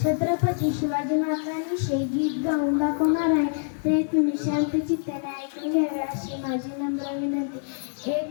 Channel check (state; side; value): silent; right; digital silence